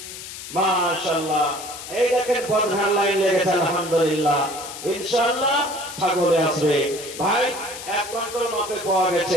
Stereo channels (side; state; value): left; noise; hiss, 11 dB below the sound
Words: মাশাআল্লাহ, এই দেখেন প্রধান লাইন লেগেছে, আলহামদুলিল্লাহ। ইনশাআল্লাহ ছাগলে আসবে ভাই, এক কন্ট্রোল মাপে পাওয়া